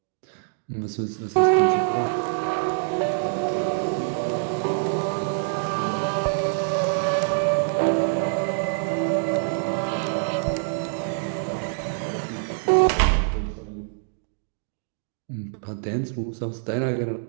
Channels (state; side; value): silent; left; digital silence